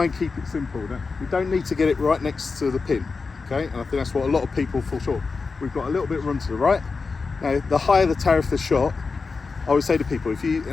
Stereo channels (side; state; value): right; quieter; 4.5 dB